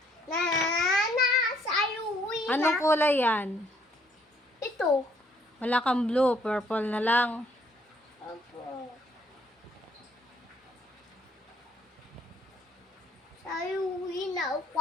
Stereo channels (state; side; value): normal; both; correlation 0.65